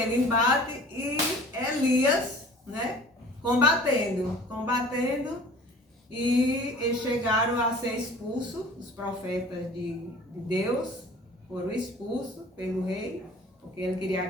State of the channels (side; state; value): both; normal; correlation 0.46